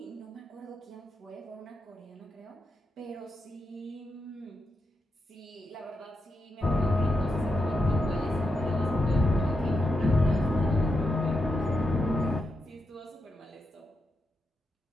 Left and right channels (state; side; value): normal; both; correlation 0.86